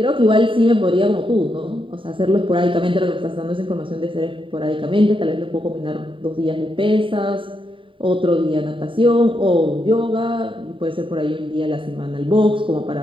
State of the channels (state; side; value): late; left; 0.25 ms